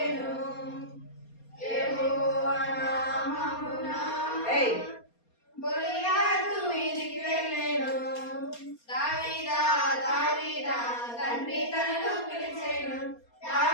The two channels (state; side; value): late; right; 4.3 ms